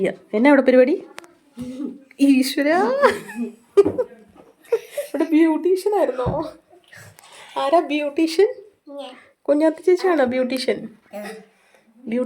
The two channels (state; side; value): identical; both; correlation 1.00